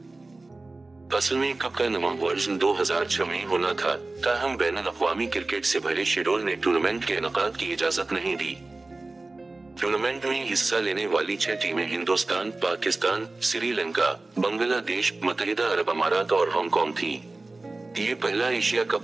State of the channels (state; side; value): quieter; left; 3.2 dB